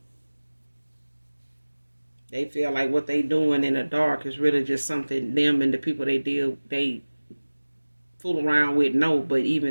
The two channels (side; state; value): both; inverted; correlation -1.00